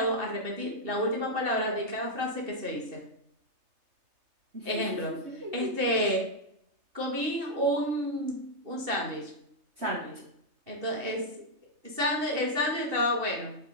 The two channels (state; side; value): late; left; 3.2 ms